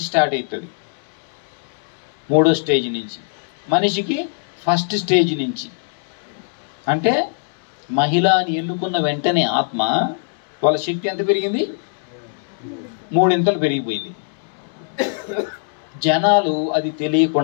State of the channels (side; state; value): right; silent; 65 dB below the other